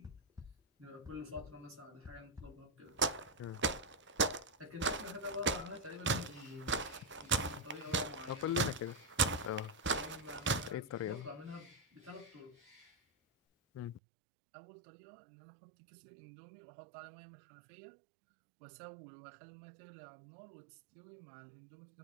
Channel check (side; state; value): left; drops out; at 14.0 s